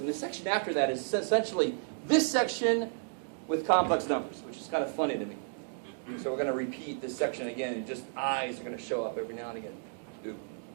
the section after that is essentially this section with complex numbers, which is kind of funny to me. So we're going to repeat this section again, and just I's are going to show up every now and again. Ooh.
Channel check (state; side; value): silent; left; digital silence